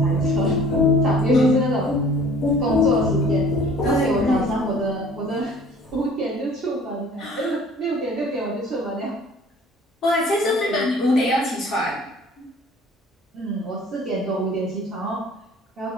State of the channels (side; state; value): both; normal; correlation 0.50